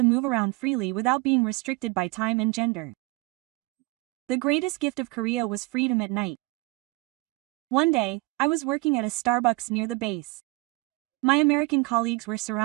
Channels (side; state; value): left; quieter; 23.1 dB